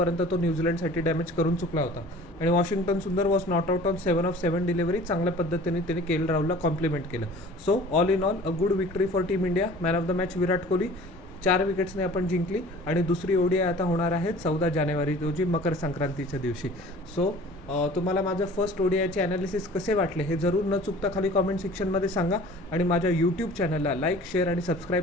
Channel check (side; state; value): both; normal; correlation 0.45